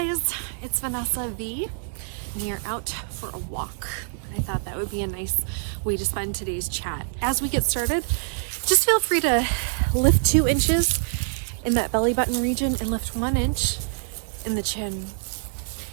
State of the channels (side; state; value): left; silent; digital silence